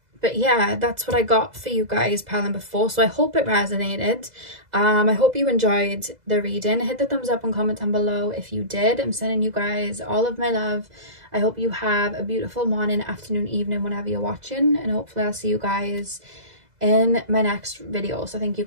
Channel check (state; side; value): late; left; 2.0 ms